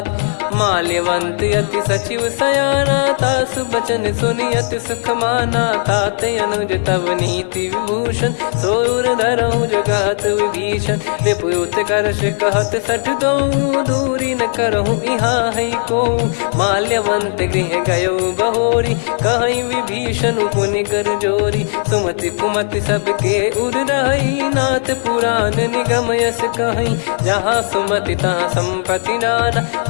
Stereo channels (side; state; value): right; silent; digital silence